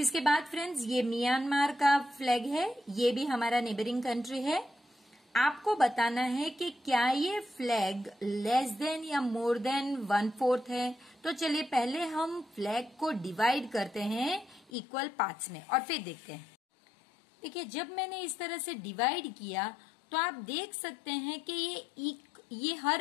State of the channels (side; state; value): right; drops out; at 14.7 s